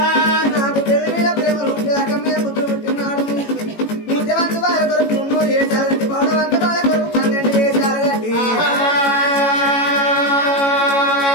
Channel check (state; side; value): late; right; 18 ms